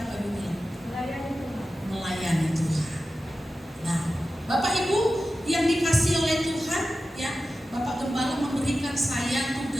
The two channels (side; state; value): both; normal; correlation 0.93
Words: apa Ibu bilang? Melayani Tuhan. Nah, Bapak Ibu yang dikasih oleh Tuhan ya, Bapak Gembala memberikan saya